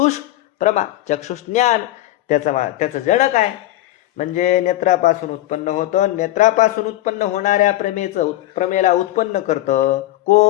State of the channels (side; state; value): right; quieter; 15.6 dB